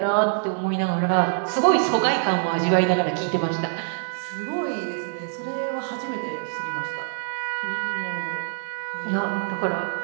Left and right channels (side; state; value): left; silent; 62 dB below the other